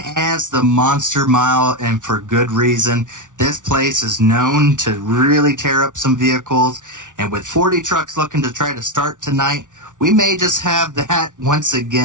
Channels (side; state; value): left; late; 0.87 ms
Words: as the Monster Mile, and for good reason. This place is known to really tear up some vehicles, and with 40 trucks looking to try to start tonight, we may just have that once